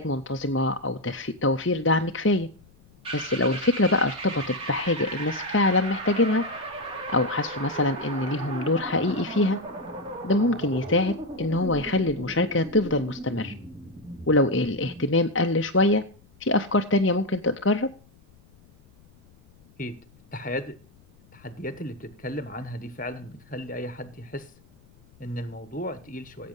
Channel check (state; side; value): noise; left; rumble, 28 dB below the sound